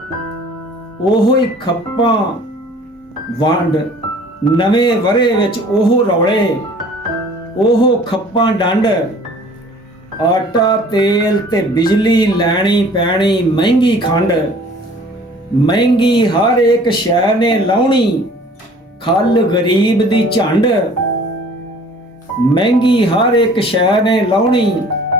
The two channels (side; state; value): both; normal; correlation 0.50